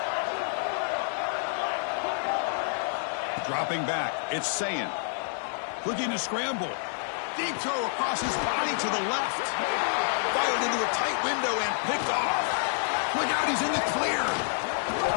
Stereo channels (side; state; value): right; silent; 59 dB below the other